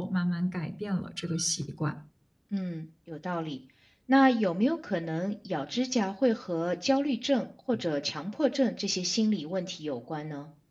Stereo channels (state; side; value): identical; both; correlation 1.00